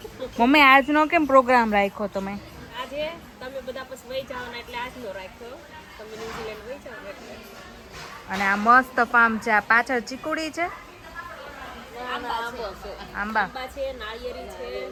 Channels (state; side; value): identical; both; correlation 1.00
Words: મમ્મી આજનો કેમ પ્રોગ્રામ રાખ્યો તમે? આજે તમે બધા પછી વહી જાવ ને એટલે આજનો રાખ્યો. તમે ન્યુઝીલેન્ડ વહી જાવ એટલે. અને આ મસ્ત ફાર્મ છે. આ પાછળ ચીકુડી છે. આંબા છે, નાળિયેરી છે,